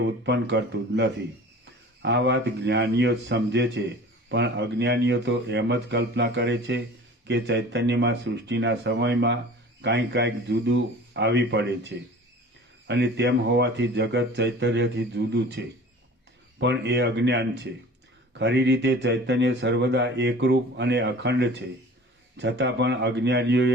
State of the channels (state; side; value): normal; both; correlation 0.42